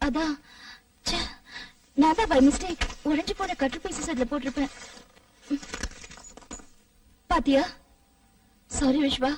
அதான். ச்சே, நான் தான் பை மிஸ்டேக் உடைஞ்சு போன கட்டு பீசஸ் அதுல போட்டிருப்பேன். பாத்தியா? Sorry Viswa,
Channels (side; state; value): both; identical; correlation 1.00